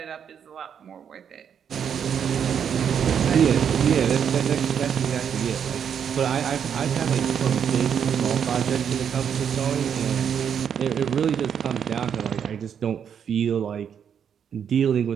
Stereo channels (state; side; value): quieter; left; 8.0 dB